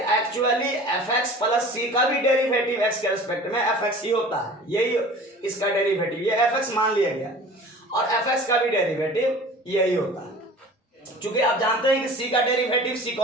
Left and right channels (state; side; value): normal; both; correlation 0.42